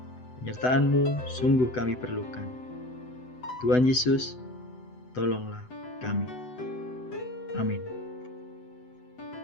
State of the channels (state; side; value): late; right; 8.0 ms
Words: Penyertaan-Mu sungguh kami perlukan. Tuhan Yesus, tolonglah kami. Amin.